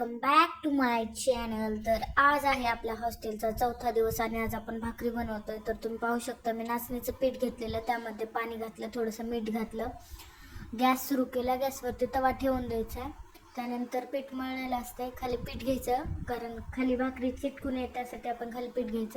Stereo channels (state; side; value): identical; both; correlation 1.00